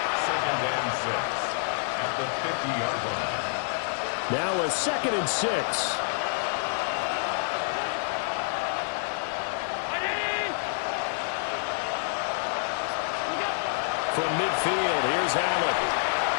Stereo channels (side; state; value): right; silent; 59 dB below the other